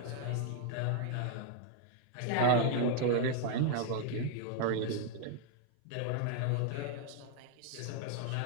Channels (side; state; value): both; different; correlation 0.00